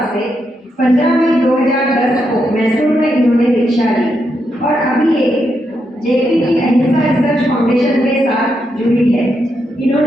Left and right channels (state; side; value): normal; both; correlation 0.82